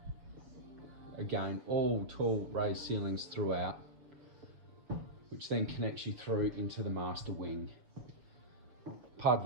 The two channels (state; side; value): late; left; 6.7 ms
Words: Again, all tall raised ceilings throughout, which then connects you through into the master wing. Part